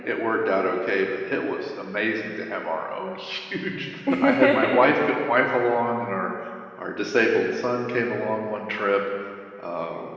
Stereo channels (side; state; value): both; identical; correlation 1.00